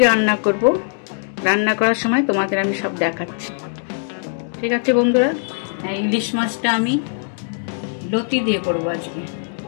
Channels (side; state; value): right; silent; digital silence